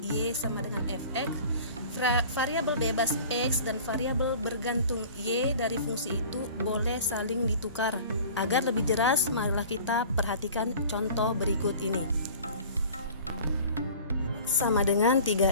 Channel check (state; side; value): inverted; both; correlation -0.43